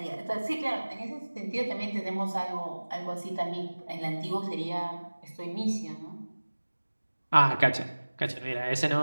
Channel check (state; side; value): inverted; both; correlation -1.00